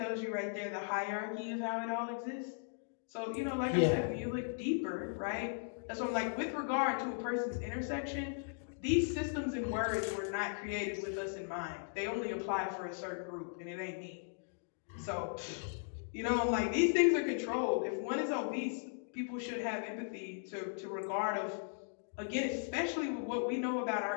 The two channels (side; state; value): right; silent; digital silence